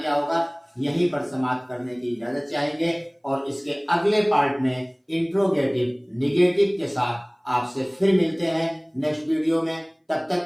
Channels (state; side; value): identical; both; correlation 1.00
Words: होगा। यहीं पर समाप्त करने की इजाजत चाहेंगे और इसके अगले पार्ट में इंट्रोगेटिव निगेटिव के साथ आपसे फिर मिलते हैं नेक्स्ट वीडियो में। तब